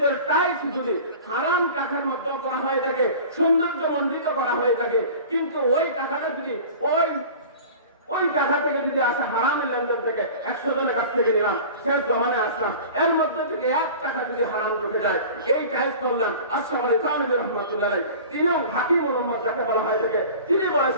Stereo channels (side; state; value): both; inverted; correlation -0.39